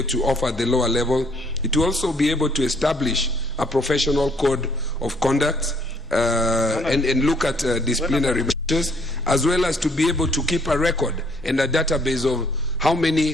to offer at the lower level. It will also be able to establish a professional code of conduct and look at disciplinary measures, as well as to be able to keep a record and a database of how many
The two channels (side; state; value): both; normal; correlation 0.65